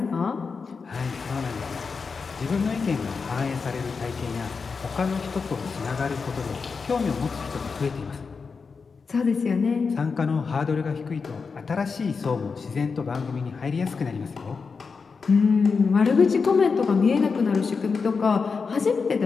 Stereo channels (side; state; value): right; quieter; 5.0 dB